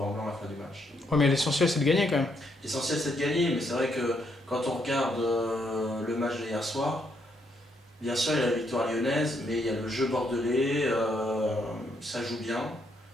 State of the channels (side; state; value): both; normal; correlation 0.75